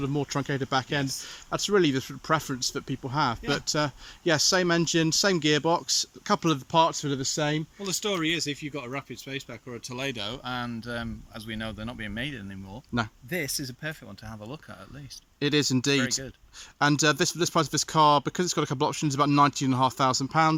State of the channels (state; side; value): identical; both; correlation 1.00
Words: of more truncated back end, that's really the sort of preference that people have. Yeah. But yeah, same engine, same gearbox, a couple of the parts that are the same. Well, the story is, if you've got a Rapid Spaceback or a Toledo, and as we know, they're not being made anymore. No, this is a perfect one to have a look at least. it is indeed. Very good. And this price of this car, because it's got a couple of options, about £19,500.